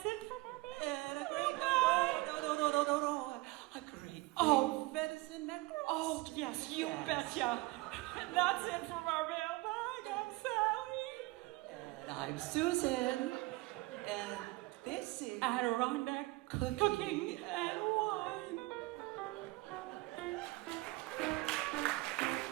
it for our meal. And a great no. A great venison neck roast. Oh, yes, you betcha. And that's it from our mailbag. I'm Sally. And I'm Susan. And this is Adirondack Cooking and Wine.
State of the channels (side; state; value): left; quieter; 21.9 dB